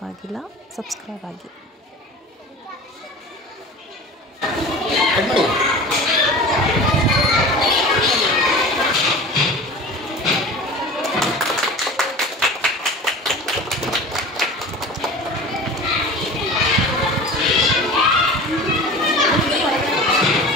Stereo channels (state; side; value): normal; both; correlation 0.36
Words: ಆಗಿಲ್ಲ ಸಬ್ಸ್ಕ್ರೈಬ್ ಆಗಿ.